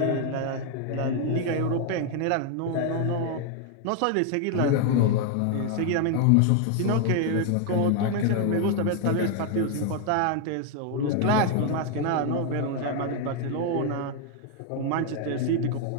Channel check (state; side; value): different; both; correlation 0.00